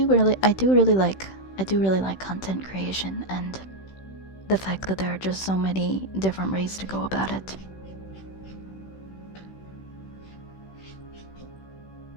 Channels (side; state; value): right; late; 16 ms